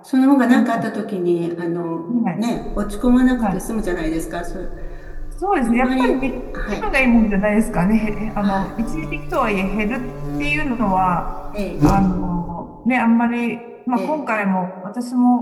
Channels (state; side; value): identical; both; correlation 1.00